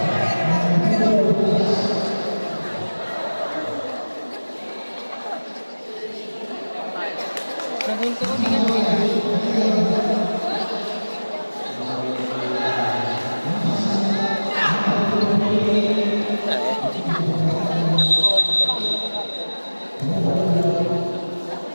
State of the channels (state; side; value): inverted; both; correlation -1.00